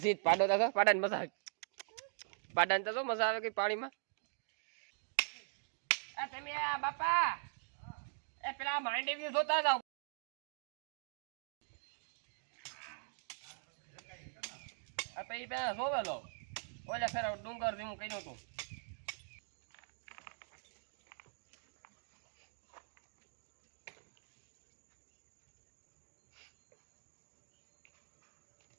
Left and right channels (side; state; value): left; silent; digital silence